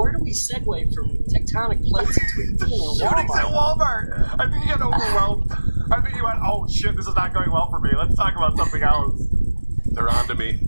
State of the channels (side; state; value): both; inverted; correlation -1.00